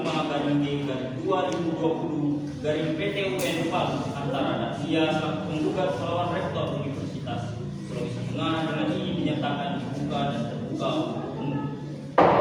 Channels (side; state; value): both; identical; correlation 1.00